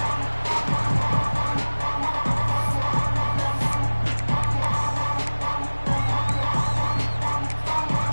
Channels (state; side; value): inverted; both; correlation -1.00